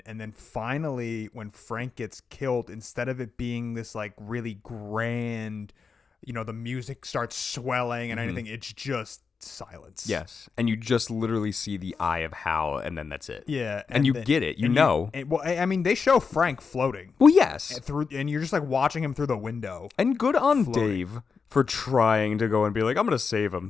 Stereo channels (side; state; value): right; quieter; 5.3 dB